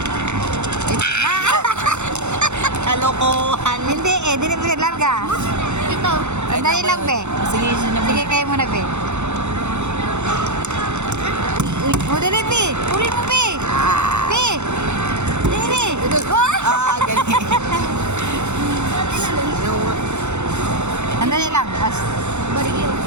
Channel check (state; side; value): late; left; 0.83 ms